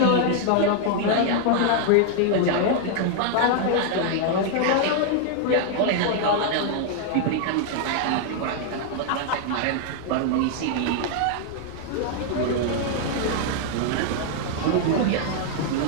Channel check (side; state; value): both; different; correlation 0.00